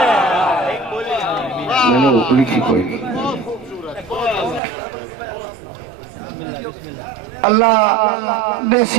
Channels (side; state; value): left; drops out; at 4.6 s